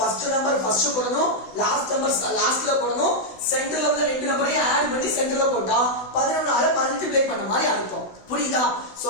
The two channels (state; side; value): late; right; 16 ms